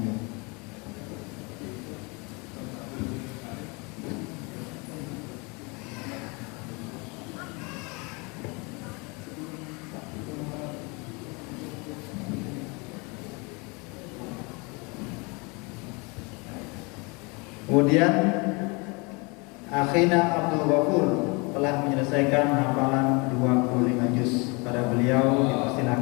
Kemudian akhina Abdul Ghafur telah menyelesaikan hafalan 25 juz. Pada beliau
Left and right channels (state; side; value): quieter; right; 29.2 dB